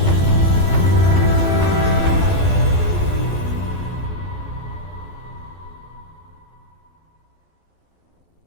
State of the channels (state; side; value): late; right; 12 ms